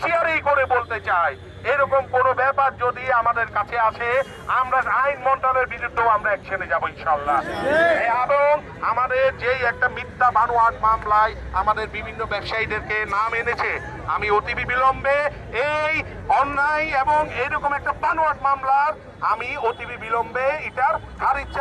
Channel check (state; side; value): identical; both; correlation 1.00